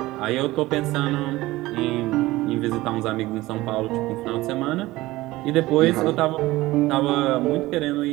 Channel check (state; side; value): quieter; left; 18.4 dB